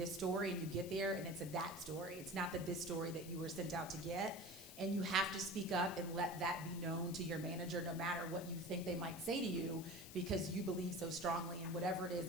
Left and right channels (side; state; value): left; noise; hiss, 14 dB below the sound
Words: story, and you get there and it's a that story. It's not the this story that you were sent out to get. And you have to speak up and let that be known to your manager, no matter what you think they might say to you, because you believe so strongly in whatever it is